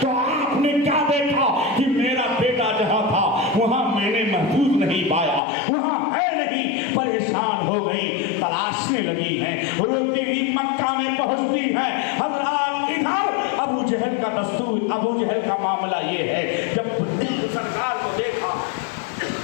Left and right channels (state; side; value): drops out; right; at 5.4 s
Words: तो आपने क्या देखा कि मेरा बेटा जहाँ था वहाँ मैंने महफूज नहीं पाया, वहाँ है नहीं। परेशान हो गई, तलाशने लगी हैं, रोती हुई मक्का में पहुँचती हैं। हज़रात इधर अबू जहल का दस्तूर, अबू जहल का मामला ये है, जब सरकार को देखा,